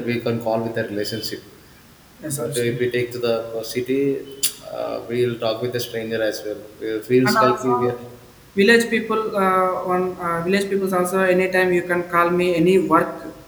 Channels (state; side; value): identical; both; correlation 1.00